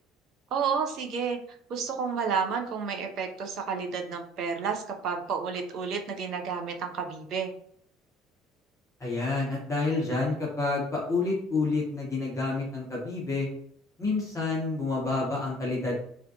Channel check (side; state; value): both; normal; correlation 0.51